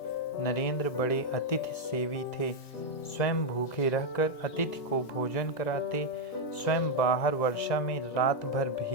नरेंद्र बड़े अतिथि सेवी थे। स्वयं भूखे रहकर अतिथि को भोजन कराते, स्वयं बाहर वर्षा में रात भर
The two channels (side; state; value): right; late; 1.9 ms